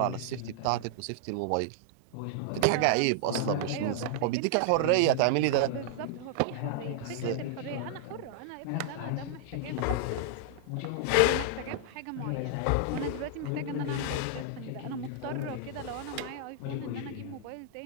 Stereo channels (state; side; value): different; both; correlation -0.01